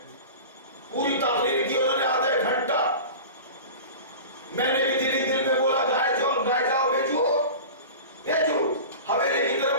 پوری تقریر کی انہوں نے آدھا ایک گھنٹہ، میں نے بھی دل میں بولا گائے جاؤ بھیجو حویلی کی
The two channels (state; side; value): inverted; both; correlation -0.34